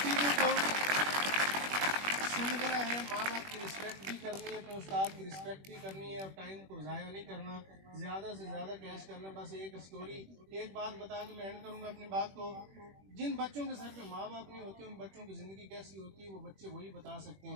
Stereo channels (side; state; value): left; late; 21 ms